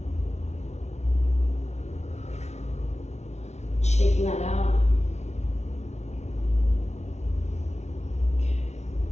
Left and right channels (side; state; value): right; late; 0.32 ms